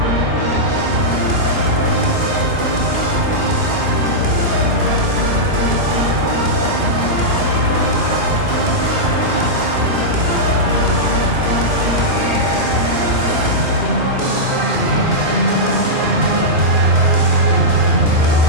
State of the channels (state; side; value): late; left; 2.4 ms